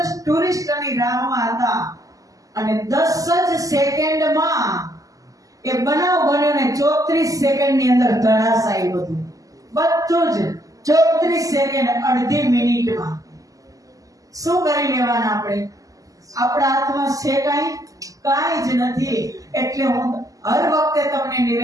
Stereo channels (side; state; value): left; late; 0.17 ms